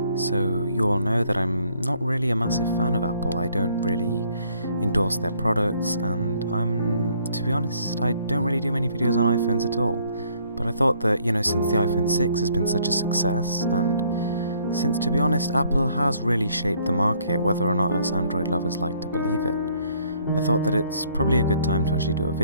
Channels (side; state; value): both; inverted; correlation -0.64